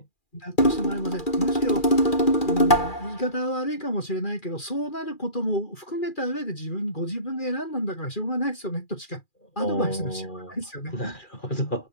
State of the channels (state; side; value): late; right; 2.4 ms